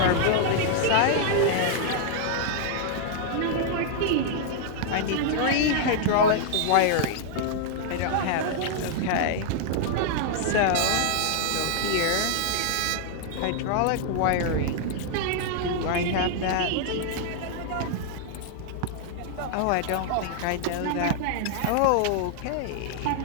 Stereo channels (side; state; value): both; different; correlation -0.01